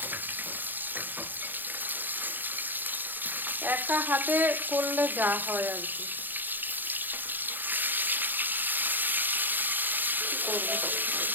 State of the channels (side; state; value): left; late; 0.089 ms